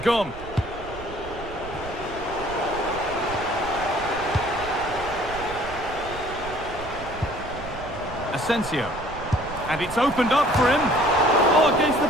Asensio. And it's opened up for him. Oh, against the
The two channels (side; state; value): right; noise; rumble, 14 dB below the sound